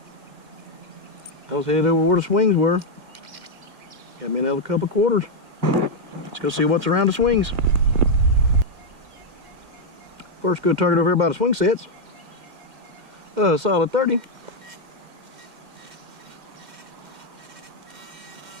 I was headed over where the swings were. Got me another couple quarters. Let's go see what's around the swings. First good target over here by the swing sets. Solid 30.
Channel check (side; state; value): left; late; 2.1 ms